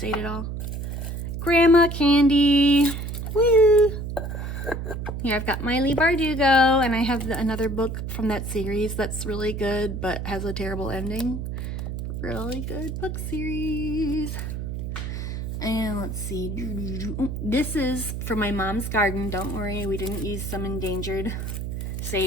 ate it all. Grandma candy. Woo! Here I've got Miley Bardugo, and I have another book from that series that's really good but has a terrible ending. Really good book series. And let's see. This is from my mom's garden. Don't worry, we didn't use some endangered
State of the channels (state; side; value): noise; right; hum, 5 dB below the sound